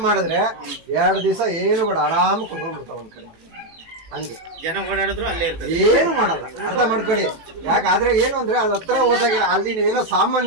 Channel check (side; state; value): left; late; 18 ms